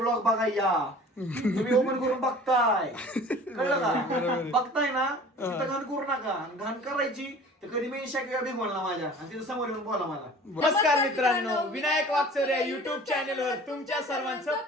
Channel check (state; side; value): normal; both; correlation 0.45